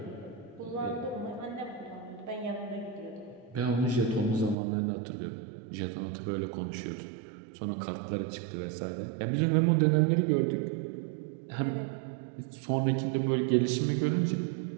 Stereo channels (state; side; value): drops out; left; at 4.5 s